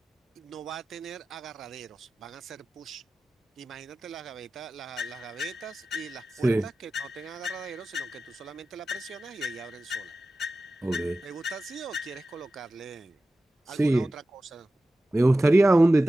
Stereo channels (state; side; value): normal; both; correlation 0.95